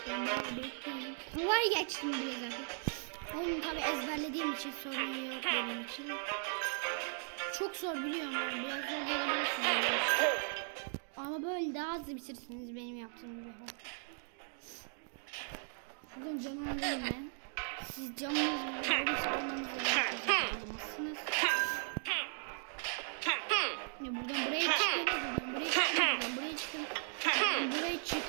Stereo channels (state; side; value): silent; left; 53 dB below the other